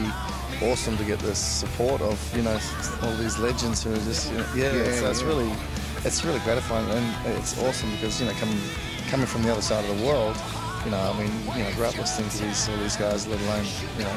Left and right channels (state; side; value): identical; both; correlation 1.00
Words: awesome to get the support of, you know, all these legends who are just, you know, it's really gratifying, and it's awesome because, you know, coming from the other side of the world, you know, I mean, you know, grew up listening to all these guys, let alone, you